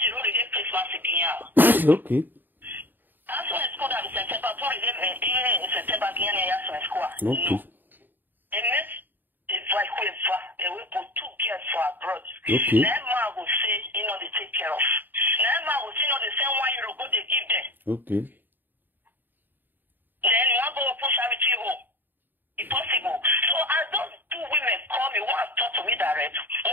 already Christmas again. Okay. That's why it's called September. In September again, that's school. Okay. And this is like we put 2 girls for abroad. Okay. Never will say, they take care of. Never will say, the same €1 go they give them. Okay. Then you want to go push charity home. It's possible. So as those 2 women call me, one talk to me direct,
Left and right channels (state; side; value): late; left; 0.091 ms